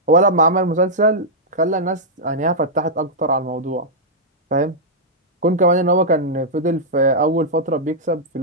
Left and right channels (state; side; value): normal; both; correlation -0.09